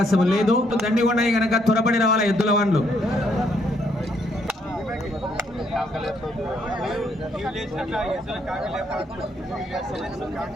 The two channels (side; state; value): both; normal; correlation 0.71